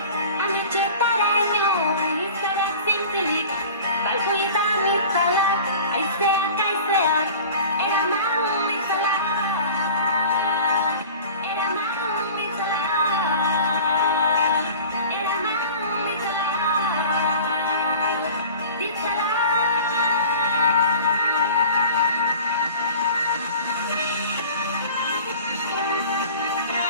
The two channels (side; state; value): both; inverted; correlation -0.41